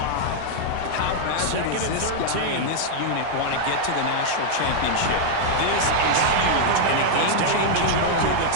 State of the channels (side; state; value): both; different; correlation 0.00